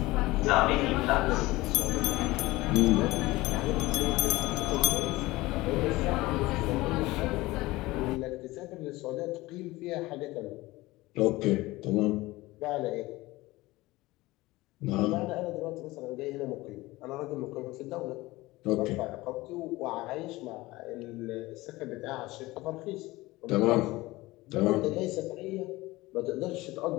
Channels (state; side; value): quieter; right; 19.8 dB